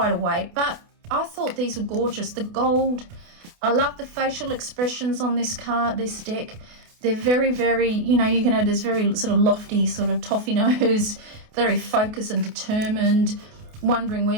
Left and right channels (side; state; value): left; late; 28 ms